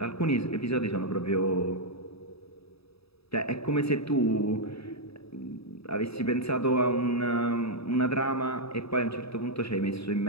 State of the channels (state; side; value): late; right; 0.77 ms